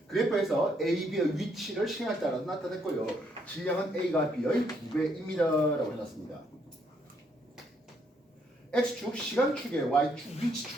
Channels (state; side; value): normal; both; correlation 0.72